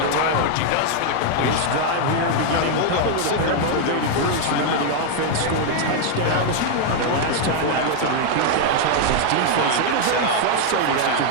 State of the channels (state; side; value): different; both; correlation 0.00